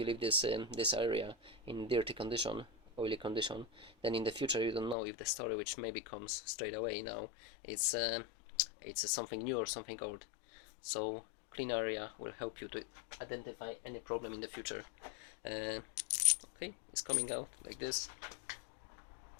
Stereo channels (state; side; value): drops out; right; at 5.0 s